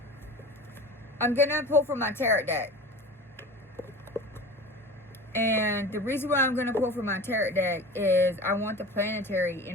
I'm going to pull from my tarot deck. And the reason why I'm going to pull from my tarot deck is I want the planetary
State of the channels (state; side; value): normal; both; correlation 0.35